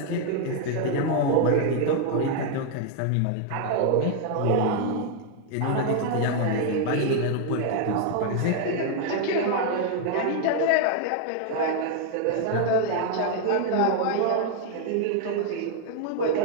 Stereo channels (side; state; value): both; different; correlation 0.00